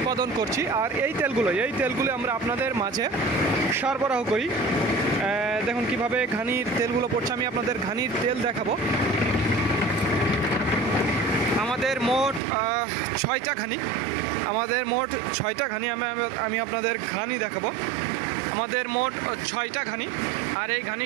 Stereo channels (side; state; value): left; drops out; at 12.4 s